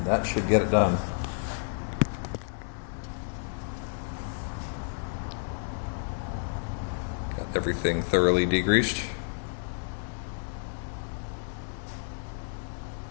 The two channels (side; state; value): right; silent; 58 dB below the other